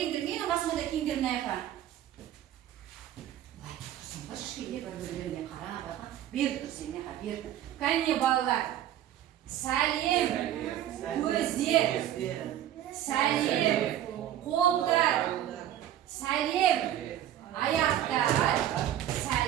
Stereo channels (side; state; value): left; quieter; 11.9 dB